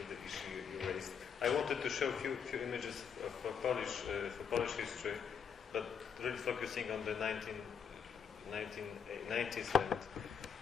the issue you raised. I wanted to show a few images for Polish history, but really focusing on the 1990s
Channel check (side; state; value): right; quieter; 7.1 dB